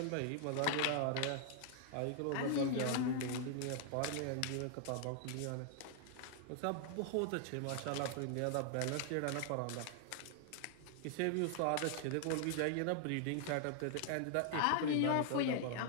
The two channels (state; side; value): different; both; correlation 0.00